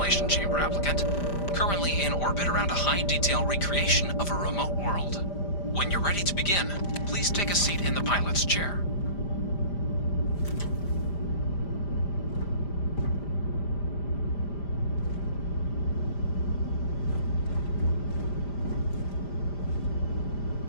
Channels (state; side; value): late; right; 5.0 ms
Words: Chamber applicant, currently in orbit around a high-detail recreation of a remote world. When you're ready to begin, please take a seat in the pilot's chair.